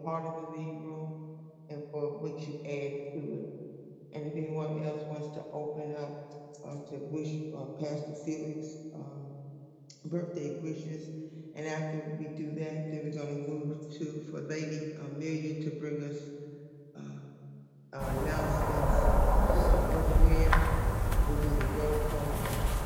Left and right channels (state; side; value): identical; both; correlation 1.00